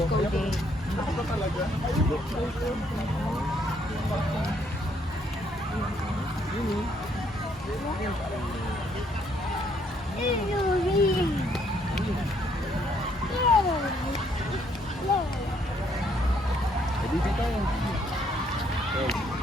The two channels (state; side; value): normal; both; correlation 0.69